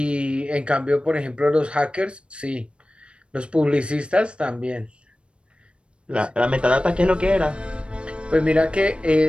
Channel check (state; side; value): late; left; 0.058 ms